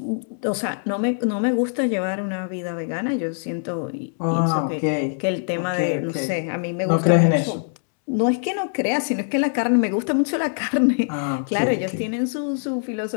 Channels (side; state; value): right; silent; 63 dB below the other